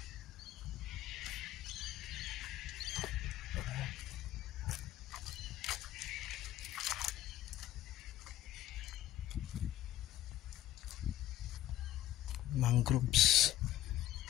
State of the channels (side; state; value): right; quieter; 13.2 dB